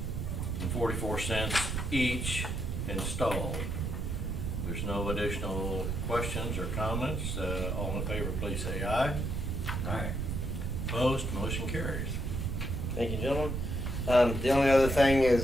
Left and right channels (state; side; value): noise; right; rumble, 2 dB below the sound